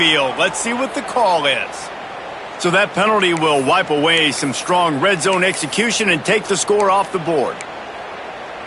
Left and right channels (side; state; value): both; identical; correlation 1.00